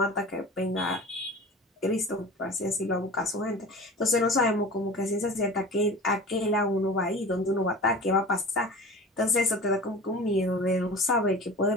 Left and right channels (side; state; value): both; normal; correlation 0.37